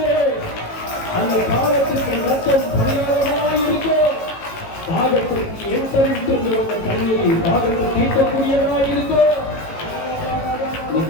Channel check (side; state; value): right; late; 18 ms